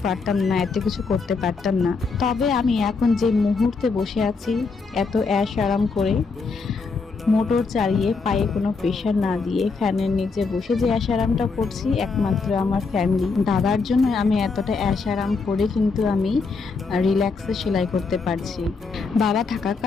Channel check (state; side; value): quieter; right; 4.4 dB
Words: পারতাম না, এত কিছু করতে পারতাম না। তবে আমি এখন যে মুহূর্তে বসে আছি এত অ্যাশ আরাম করে, মোটর চালিয়ে, পায়ে কোনো প্রেশার না দিয়ে ফ্যানের নিচে বসে যে আরামটা করছি একমাত্র আমার ফ্যামিলি, দাদার জন্য আমি এতটা আরাম করে কিন্তু আমি রিল্যাক্সে সেলাই করতে পারছি। বাবা